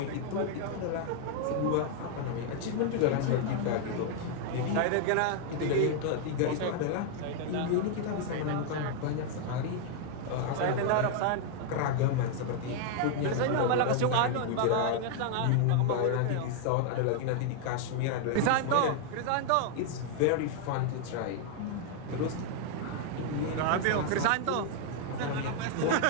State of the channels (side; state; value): both; different; correlation 0.00